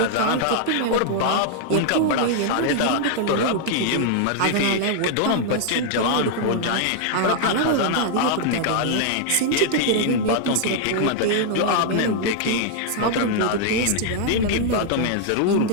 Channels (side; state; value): both; different; correlation 0.00